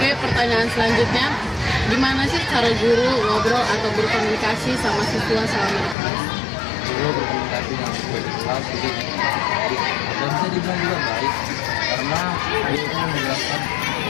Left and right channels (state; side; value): drops out; right; at 6.0 s